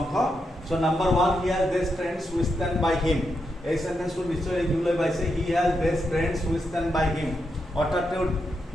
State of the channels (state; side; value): normal; both; correlation 0.84